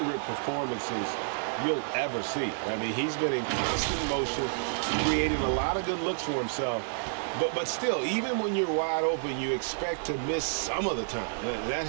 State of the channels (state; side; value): silent; left; 58 dB below the other